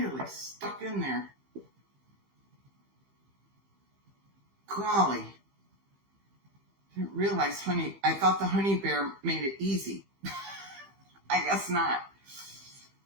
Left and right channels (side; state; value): left; late; 15 ms